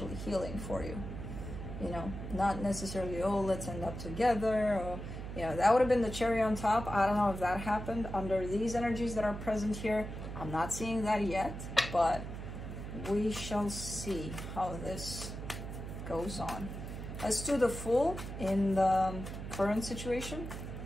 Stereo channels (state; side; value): noise; right; hum, 8 dB below the sound